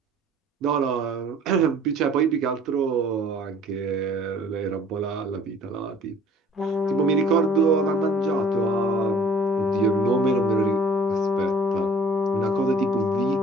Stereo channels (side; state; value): both; normal; correlation 0.53